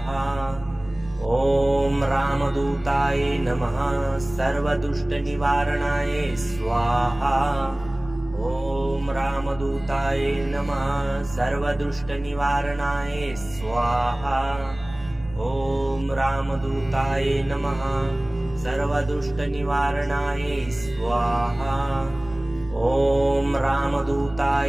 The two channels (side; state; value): right; noise; rumble, 17 dB below the sound